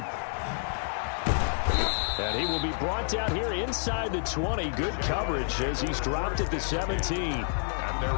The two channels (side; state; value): right; silent; digital silence